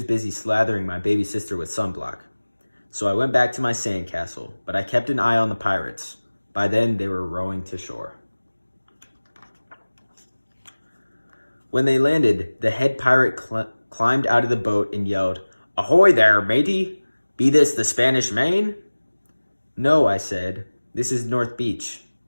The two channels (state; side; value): inverted; both; correlation -1.00